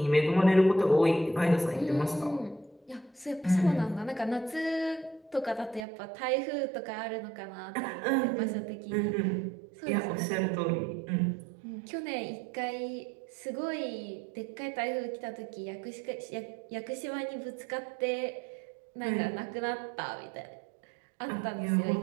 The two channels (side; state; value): left; drops out; at 5.9 s